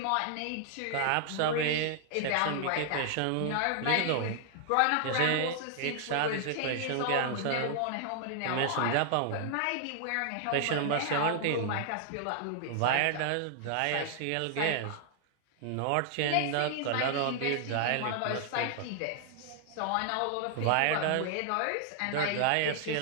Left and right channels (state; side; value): different; both; correlation 0.00